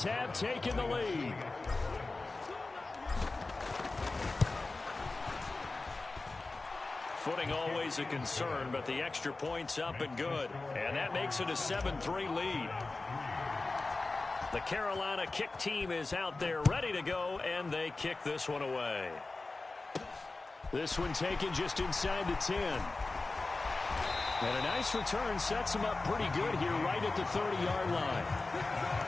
have taken the lead. Footing always a concern, but the extra point's up and good. And that makes it a 7-3 lead. The Carolina kick team is out there ready to go, and they kick this one away. This one taken just inside the 10. And a nice return sets him up pretty good here right at the 30-yard line.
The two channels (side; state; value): right; quieter; 3.4 dB